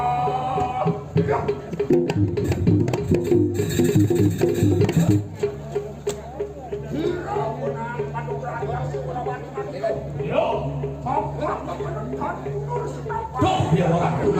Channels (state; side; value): identical; both; correlation 1.00